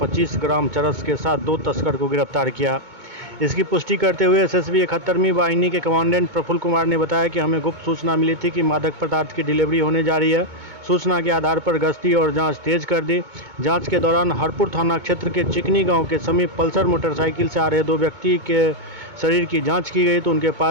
25 ग्राम चरस के साथ दो तस्कर को गिरफ्तार किया। इसकी पुष्टि करते हुए एसएसबी 71वीं वाहिनी के कमांडेंट प्रफुल्ल कुमार ने बताया कि हमें गुप्त सूचना मिली थी कि मादक पदार्थ की डिलीवरी होने जा रही है। सूचना के आधार पर गश्ती और जांच तेज कर दी। जांच के दौरान हरपुर थाना क्षेत्र के चिकनी गांव के समीप पल्सर मोटरसाइकिल से आ रहे दो व्यक्ति के शरीर की जांच की गई तो उनके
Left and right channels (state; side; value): late; left; 2.2 ms